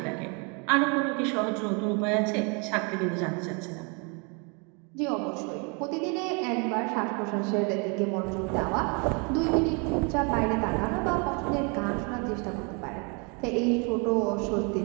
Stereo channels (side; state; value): left; quieter; 33.5 dB